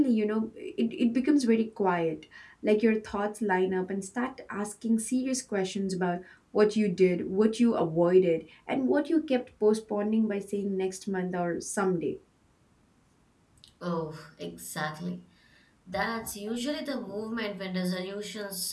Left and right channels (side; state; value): both; identical; correlation 1.00